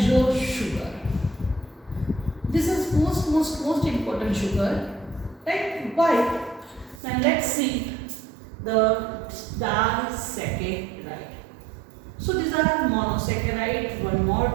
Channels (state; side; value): drops out; left; at 7.0 s